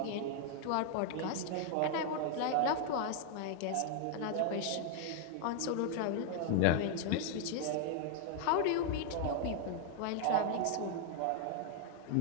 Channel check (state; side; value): different; both; correlation 0.00